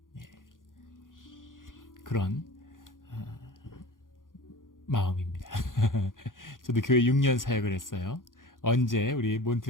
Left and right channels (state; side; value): late; right; 0.89 ms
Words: 그런 마음입니다. 저도 교회 6년 사역을 했어요. 언제 우리